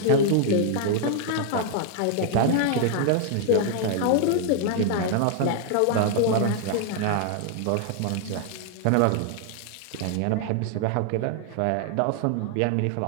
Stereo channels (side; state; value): both; different; correlation 0.00